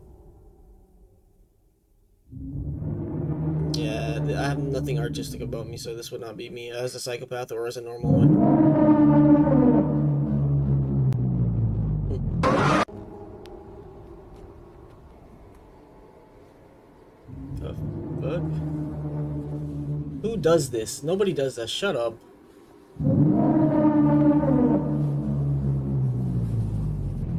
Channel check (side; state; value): both; identical; correlation 1.00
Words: Yeah, I have nothing artistic about me, so this would not be me as a psychopath or as a normal one. The fuck? Who does this? Nobody does that. Shut up.